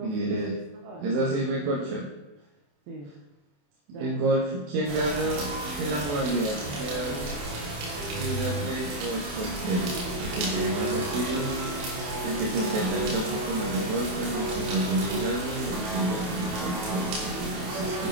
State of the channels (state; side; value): late; left; 28 ms